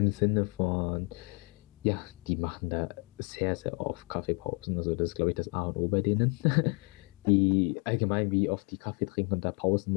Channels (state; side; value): quieter; right; 33.9 dB